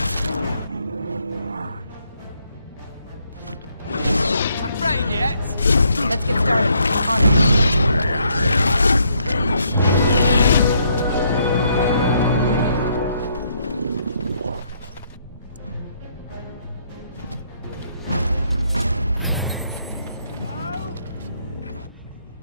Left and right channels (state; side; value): inverted; both; correlation -0.72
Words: Afraid yet? Let's get started. On it.